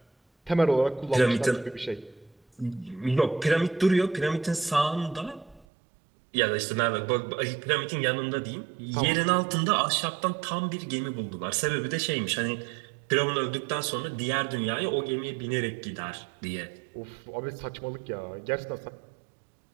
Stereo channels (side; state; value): left; drops out; at 5.7 s